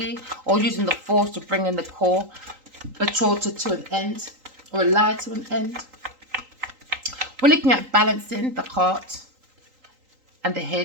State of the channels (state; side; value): late; left; 3.8 ms